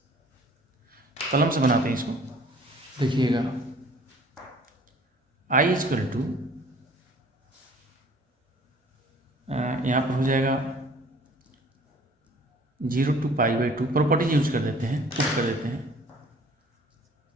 कलम से बनाते हैं इसको, देखिएगा i इजकल टू यहाँ पर हो जाएगा 0 to pi by 2, properties use कर देते हैं, पुट कर देते हैं,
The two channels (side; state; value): both; normal; correlation 0.52